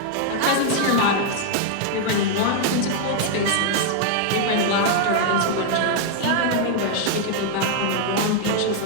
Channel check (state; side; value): different; both; correlation 0.00